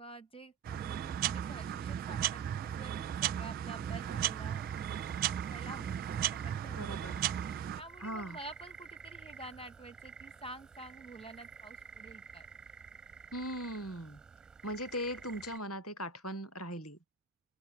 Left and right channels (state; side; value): quieter; left; 6.7 dB